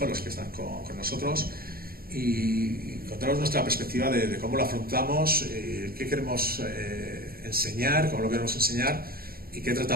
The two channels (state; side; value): late; left; 0.43 ms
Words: los que están con nosotros, y contaros nuestra perspectiva de cómo lo afrontamos, qué queremos enseñar, cómo lo queremos enseñar y qué